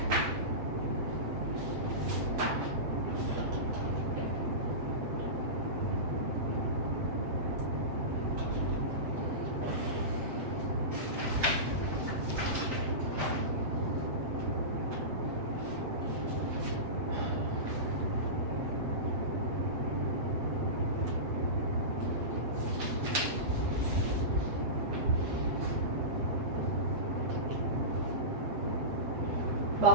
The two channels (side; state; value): left; late; 7.8 ms